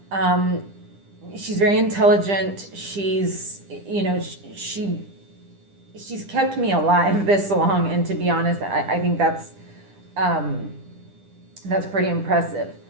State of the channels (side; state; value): left; late; 10 ms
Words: She's very intelligent. She's, you know, she's kept me alive this long. And to be honest, I think that's pretty impressive.